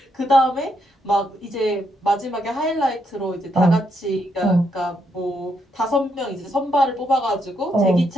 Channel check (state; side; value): normal; both; correlation 0.77